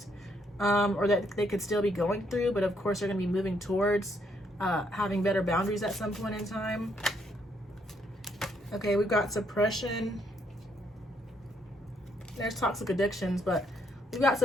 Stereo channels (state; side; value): normal; both; correlation 0.72